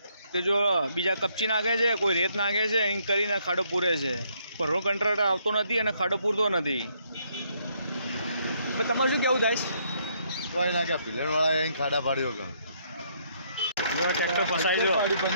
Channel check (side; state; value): both; inverted; correlation -0.71